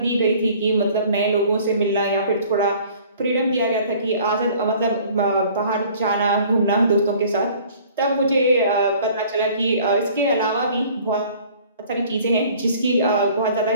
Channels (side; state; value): both; inverted; correlation -0.52